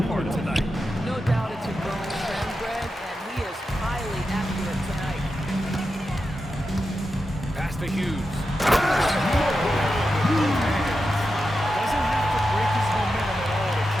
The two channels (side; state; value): both; normal; correlation 0.89